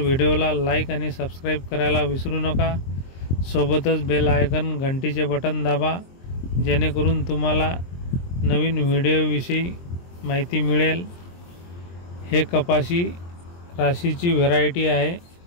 लाईक आणि सबस्क्राइब करायला विसरू नका। सोबतच बेल आयकॉन घंटीचे बटन दाबा, जेणेकरून तुम्हाला नवीन व्हिडिओविषयी माहिती मिळेल। हे कपाशी राशीची व्हरायटी आहे,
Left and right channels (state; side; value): late; right; 23 ms